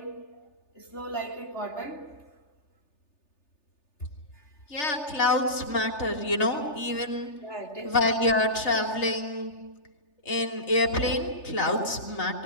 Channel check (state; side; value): late; right; 3.3 ms